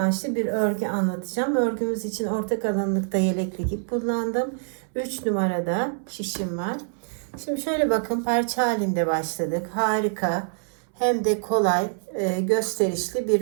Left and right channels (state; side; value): silent; left; 61 dB below the other